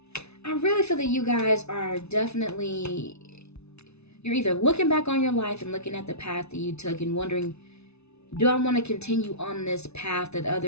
I really feel that you guys are definitely, you're either looking back on your life and looking at the path that you took and wondering, do I want to continue on this path that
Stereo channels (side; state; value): right; late; 0.80 ms